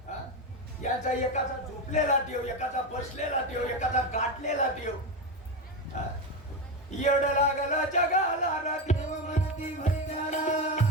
यांचा एकाचा झोपलेला देव, एकाचा बसलेला देव, एकाचा गाठलेला देव. येड लागला जगाला देव म्हणती भैयाला.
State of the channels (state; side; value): normal; both; correlation 0.15